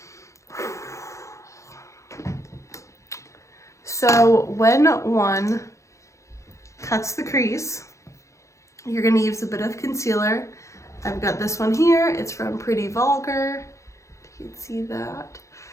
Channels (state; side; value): late; right; 0.15 ms